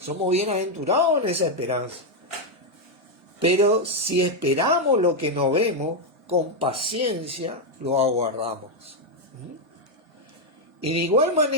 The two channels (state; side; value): normal; both; correlation 0.01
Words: bienaventurados en esa esperanza. Pero si esperamos lo que no vemos, con paciencia lo aguardamos. Y de igual